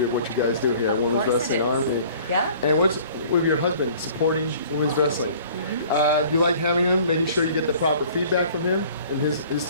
of what you guys do here at Women's Wrestling Army. Yeah. And what's with your husband supporting women's wrestling? Do you like having him, making sure you get the proper feedback from him in his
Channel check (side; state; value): both; inverted; correlation -0.51